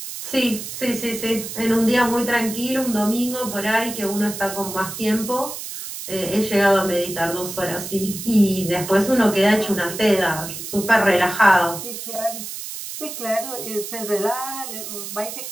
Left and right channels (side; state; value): right; noise; hiss, 8 dB below the sound